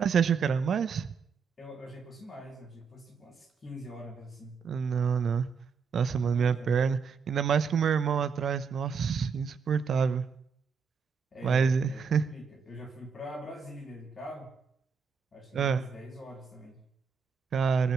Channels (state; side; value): quieter; left; 6.0 dB